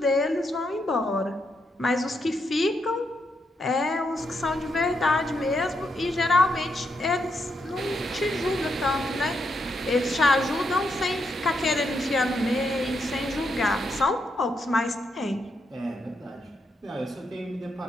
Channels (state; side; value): normal; both; correlation 0.80